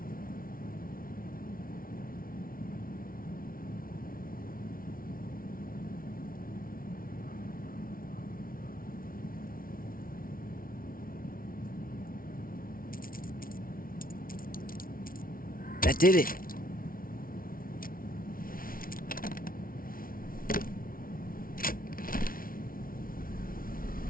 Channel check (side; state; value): right; late; 0.42 ms